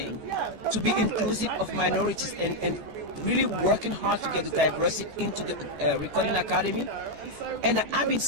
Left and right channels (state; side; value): late; left; 14 ms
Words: To be inclusive of minorities and really working hard to get the diversity into the Recording Academy. And I've been